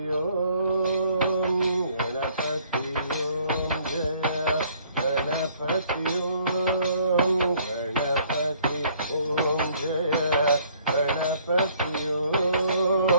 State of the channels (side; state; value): both; inverted; correlation -0.61